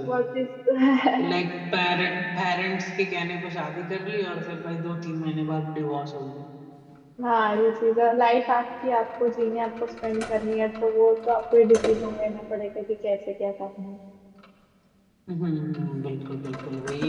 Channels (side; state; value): both; identical; correlation 1.00